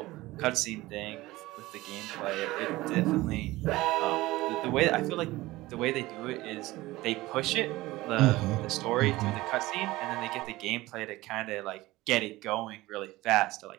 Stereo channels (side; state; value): left; quieter; 18.7 dB